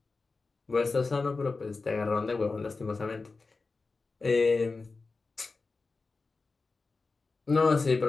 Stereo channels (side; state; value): right; quieter; 4.0 dB